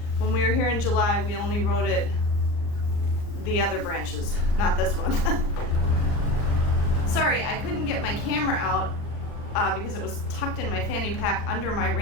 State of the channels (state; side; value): late; right; 39 ms